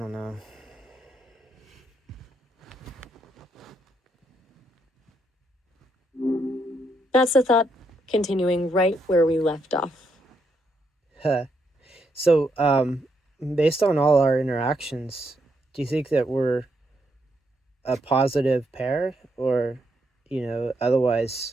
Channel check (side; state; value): both; normal; correlation 0.77